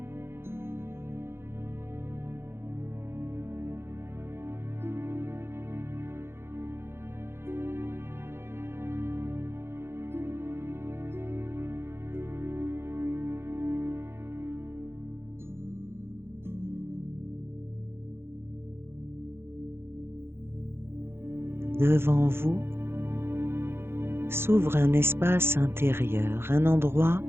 Devant vous s'ouvre un espace intérieur, un endroit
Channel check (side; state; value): left; late; 0.12 ms